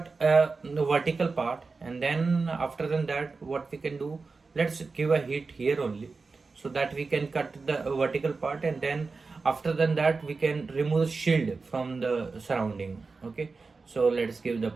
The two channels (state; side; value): quieter; left; 4.2 dB